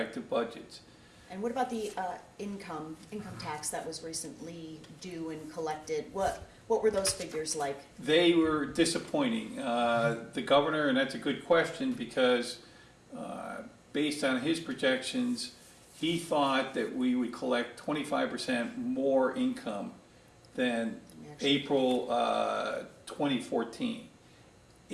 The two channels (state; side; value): identical; both; correlation 1.00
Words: budgets. And what about the income tax that was recently due and collected? What were those figures like? They were disappointing. The governor, and that's a good question because based on his projections, he thought that we would collect 25% more income than April 2014.